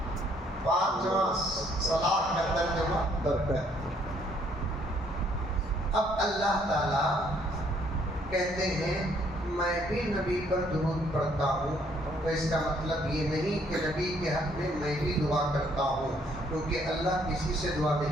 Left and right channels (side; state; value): both; normal; correlation 0.66